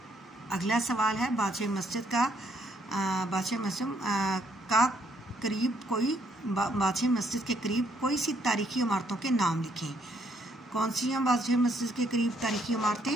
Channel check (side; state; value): both; normal; correlation 0.70